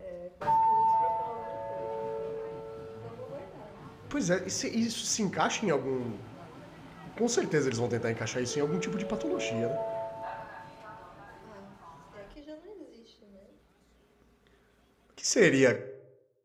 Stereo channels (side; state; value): both; identical; correlation 1.00